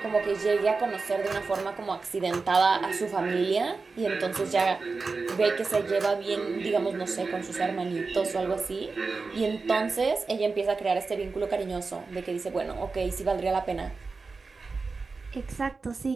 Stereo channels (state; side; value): quieter; left; 4.2 dB